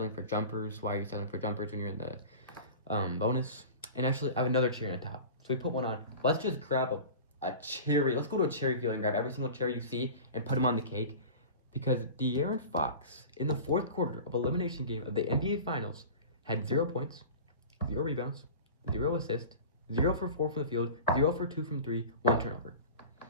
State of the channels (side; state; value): both; inverted; correlation -0.36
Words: for jumpers. Why are you settling for jumpers when you're in the bonus? And actually, I have another cherry on top. So we put one on. Let's just grab a cherry. Let's go to a cherry field and grab every single cherry you see and put them on the cake. Because De'Aaron Fox, in the fourth quarter of elimination game of the NBA Finals, had 0 points, 0 rebounds, 0 assists, 0 for 4 from the field, 0 for 2 from 3, 1 turnover.